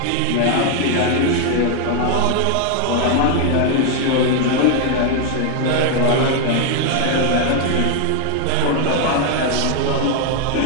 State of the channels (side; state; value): both; different; correlation 0.00